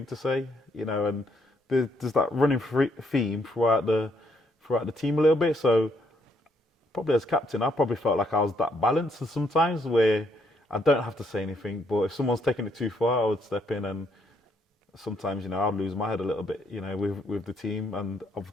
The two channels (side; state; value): both; normal; correlation 0.72